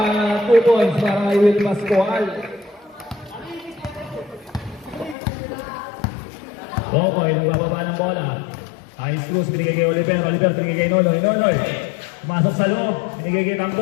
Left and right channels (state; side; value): drops out; right; at 5.2 s